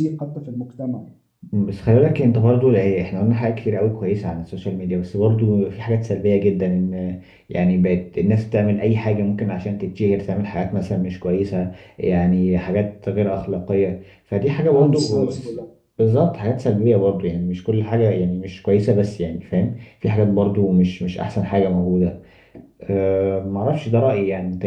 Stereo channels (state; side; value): identical; both; correlation 1.00